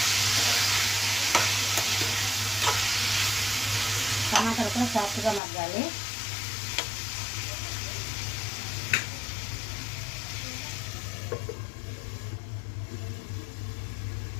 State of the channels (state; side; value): drops out; right; at 5.4 s